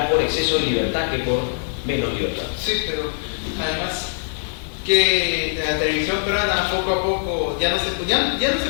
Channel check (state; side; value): silent; right; digital silence